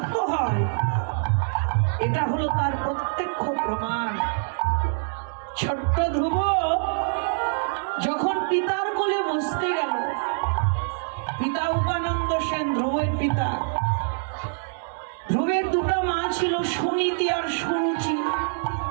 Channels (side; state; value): left; silent; digital silence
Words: হয়, এটা হলো তার প্রত্যক্ষ প্রমাণ। ছোট্ট ধ্রুব যখন পিতার কোলে বসতে গেল, পিতা। ধ্রুবের দুটো মা ছিল, সুনীতি আর সুরুচি।